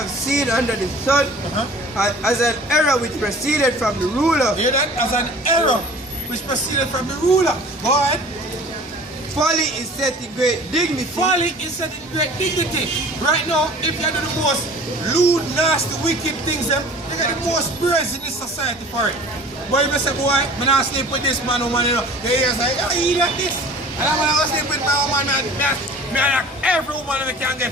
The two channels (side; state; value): both; normal; correlation 0.45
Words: seen under the sun, as an error which proceeded from the ruler. Hear that? As an error which proceeded from the ruler. Go ahead. Folly is set in great dignity. Folly is set in great dignity. Right now, if you do the most lewd, nasty, wicked things, they get the most praise in this society for it. But if you say, boy, I'm not sleep with this man, woman, you know, the ears like, oh, he like this. And I'm going to sleep with my woman, man, every woman we can get